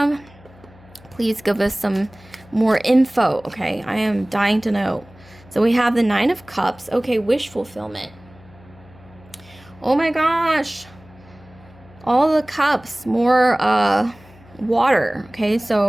Please give us some more info, okay? I am dying to know. So we have the Nine of Cups. Okay, wish fulfillment. Oh my gosh. All the cups. More water. Okay,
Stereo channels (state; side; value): noise; left; hum, 24 dB below the sound